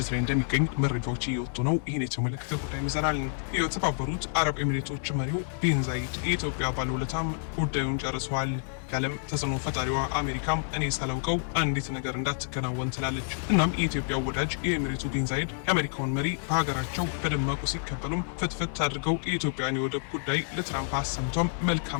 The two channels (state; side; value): silent; right; 59 dB below the other